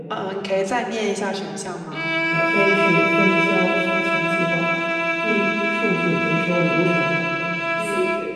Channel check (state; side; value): identical; both; correlation 1.00